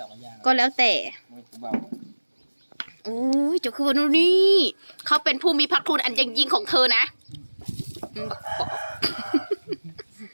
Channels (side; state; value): both; inverted; correlation -1.00